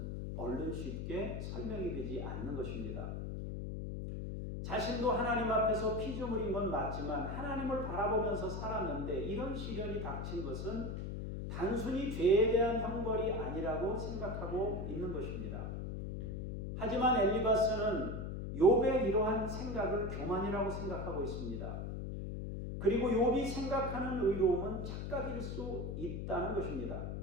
얼른 쉽게 설명이 되지 않는 것입니다. 자신도 하나님 앞에서 피조물인 건 맞지만 하나님을 바라보면서 살았는데 이런 시련이 닥친 것은 단순히 죄에 대한 형벌이 아니라고 생각하고 있는 것입니다. 하지만 엘리바스는 욥의 이러한 생각을 교만이라고 생각하고 있습니다. 그리고 욥이 생각하는 의로움은 착각일 수 있다는 것입니다.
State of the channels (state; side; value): noise; left; hum, 5 dB below the sound